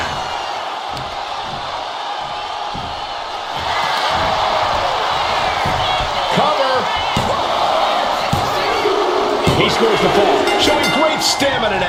Cover. He scores the fall, showing great stamina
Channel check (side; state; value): both; identical; correlation 1.00